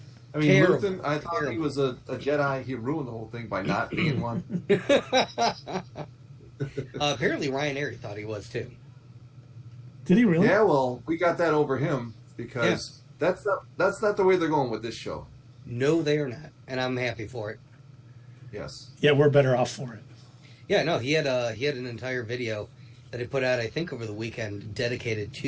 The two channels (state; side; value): identical; both; correlation 1.00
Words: I mean, Terrible. Luthen, I thought he was a Jedi. He ruined the whole thing by not being one. Apparently, Ryan Airy thought he was too. Did he really? Yeah, well, we got that over him because that's not the way they're going with this show. No, they are not, and I'm happy for it. Yes. Yeah, we're better off for it. Yeah, no, he had an entire video that he put out, I think, over the weekend, dedicated